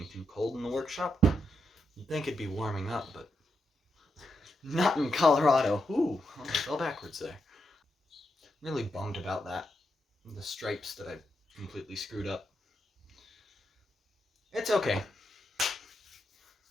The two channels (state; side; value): normal; both; correlation 0.84